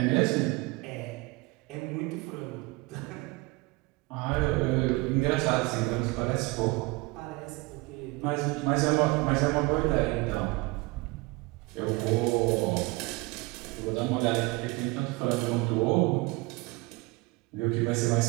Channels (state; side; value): quieter; left; 24.1 dB